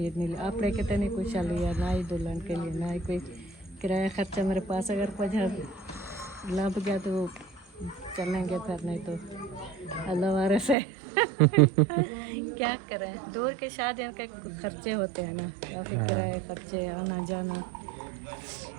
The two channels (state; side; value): drops out; left; at 10.8 s